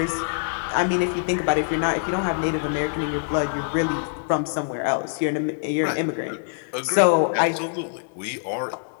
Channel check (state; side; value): silent; right; 62 dB below the other